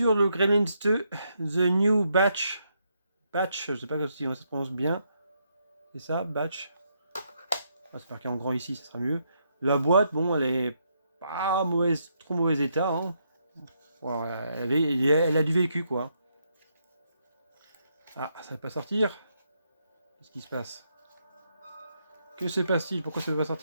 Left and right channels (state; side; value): inverted; both; correlation -0.77